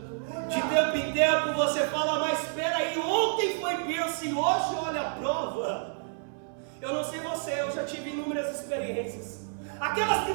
De tempo em tempo você fala: mas espera aí, ontem foi bênção e hoje olha a prova. Eu não sei você, eu já tive inúmeras experiências. Aquelas que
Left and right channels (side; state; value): left; silent; digital silence